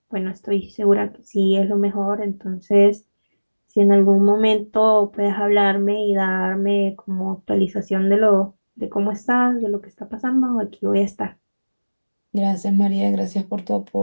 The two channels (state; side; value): inverted; both; correlation -1.00